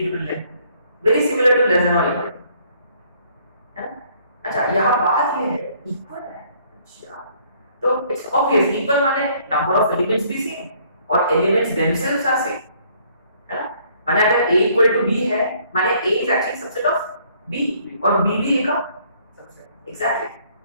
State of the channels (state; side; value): inverted; both; correlation -0.63